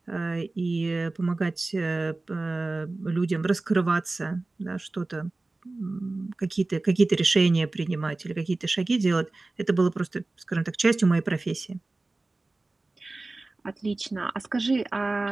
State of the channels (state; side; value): quieter; left; 3.2 dB